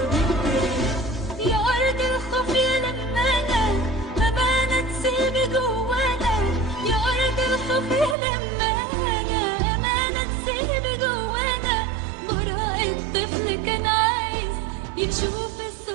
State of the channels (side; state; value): left; drops out; at 8.2 s